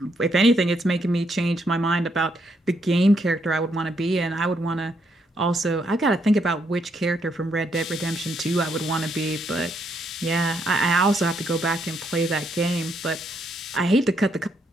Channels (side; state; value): both; normal; correlation 0.75